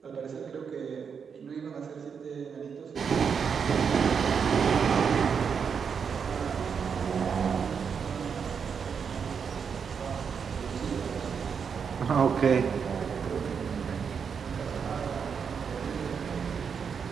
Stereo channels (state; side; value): quieter; left; 6.5 dB